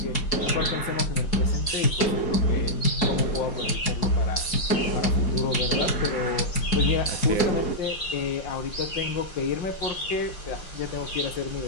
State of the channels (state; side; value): late; right; 4.6 ms